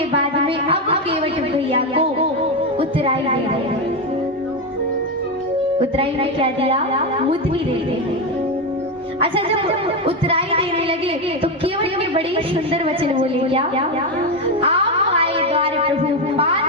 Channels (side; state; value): both; normal; correlation 0.11